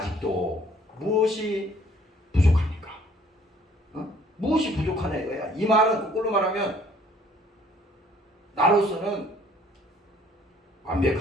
무엇이 부족합니까? 무엇이 부족하냐 이거야. 이 말은 거꾸로 말하면 나로서는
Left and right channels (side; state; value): both; normal; correlation 0.58